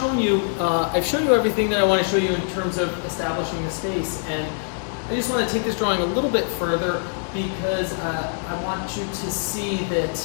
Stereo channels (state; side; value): silent; right; digital silence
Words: you everything that I want to show you in terms of establishing the space, and I just want to take this drawing a little bit further because I want you to see that